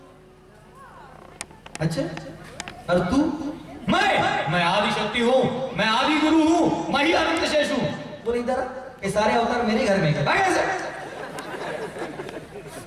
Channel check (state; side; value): identical; both; correlation 1.00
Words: अच्छा और तू? मैं आदि शक्ति हूं, मैं आदि गुरु हूं, मैं ही अनंत शेष हूं। बोले इधर ये सारे अवतार मेरे घर में है।